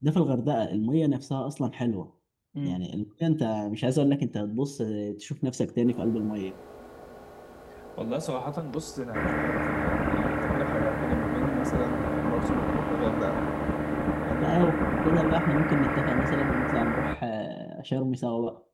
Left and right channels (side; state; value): both; identical; correlation 1.00